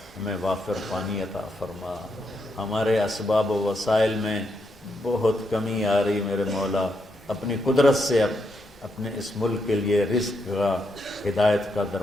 ہمیں وافر پانی عطا فرما، ہمارے اسباب و وسائل میں بہت کمی آ رہی میرے مولا، اپنی قدرت سے اپنے اس ملک کے لیے رزق کا، ہدایت کا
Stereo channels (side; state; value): both; normal; correlation 0.80